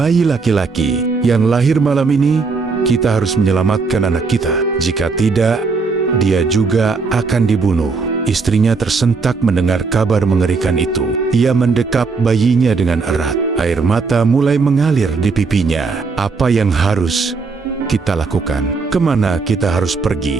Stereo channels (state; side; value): quieter; left; 4.5 dB